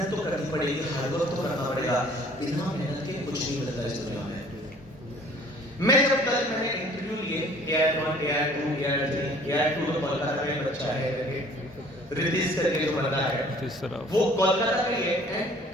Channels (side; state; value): both; normal; correlation 0.53